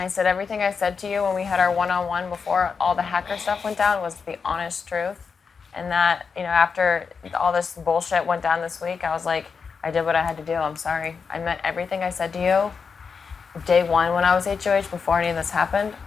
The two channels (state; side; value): quieter; right; 5.6 dB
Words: I said everything I said to you when we had our one-on-one before all the hacker stuff went down was the honest truth, and that after all this bullshit went down this week, I was like, I did what I had to do. I'm sorry. I meant everything I said to you day 1 when I was HOH before any of this happened,